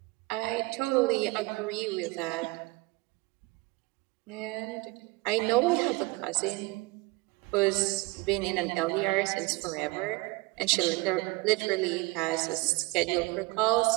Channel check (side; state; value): left; quieter; 23.2 dB